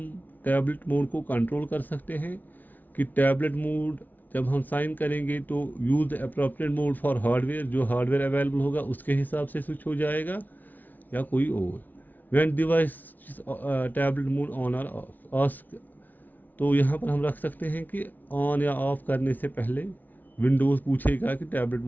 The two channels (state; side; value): late; right; 0.082 ms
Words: टैबलेट मोड को कंट्रोल कर सकते हैं कि टैबलेट मोड जब हम साइन करेंगे तो use the appropriate mode for hardware, जो हार्डवेयर अवेलेबल होगा उसके हिसाब से स्विच हो जाएगा या कोई और। When device tablet mode on और ऑफ, तो यहाँ पर हम रख सकते हैं कि ऑन या ऑफ करने से पहले विंडोज़ पूछेगा कि टैबलेट